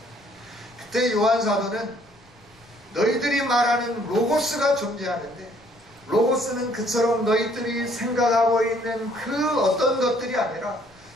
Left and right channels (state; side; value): noise; left; rumble, 29 dB below the sound